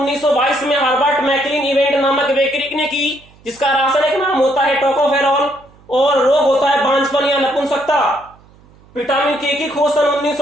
में हर्बर्ट मैकलीन इवेंट नामक वैज्ञानिक ने की, जिसका रासायनिक नाम होता है टोकोफेरोल और रोग होता है बांझपन या नपुंसकता। विटामिन के की खोज सन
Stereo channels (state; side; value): noise; right; hum, 28 dB below the sound